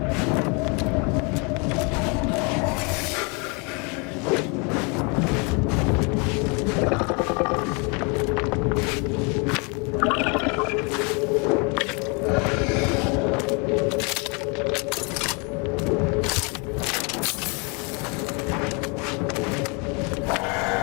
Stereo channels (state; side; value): quieter; right; 32.4 dB